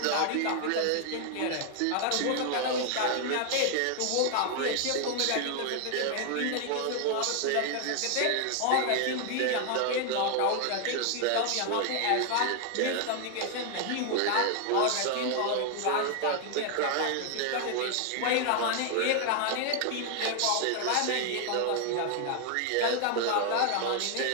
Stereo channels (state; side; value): different; both; correlation 0.00